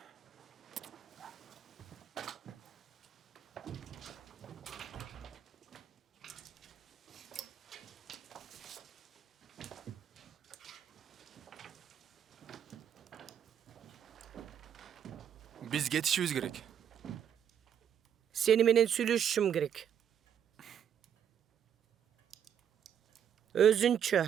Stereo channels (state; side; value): quieter; left; 8.8 dB